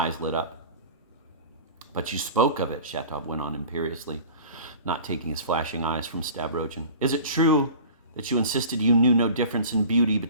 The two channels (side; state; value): both; inverted; correlation -0.41